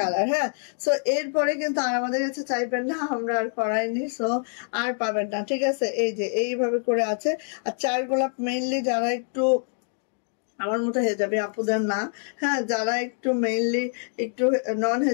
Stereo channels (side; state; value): right; silent; 61 dB below the other